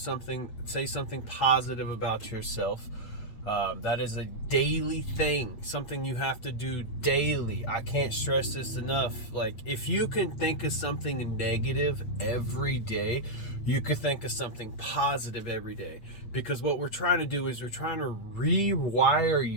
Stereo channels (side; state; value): right; late; 8.8 ms